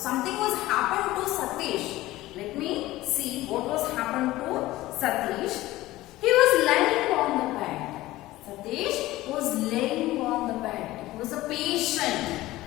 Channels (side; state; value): right; quieter; 17.2 dB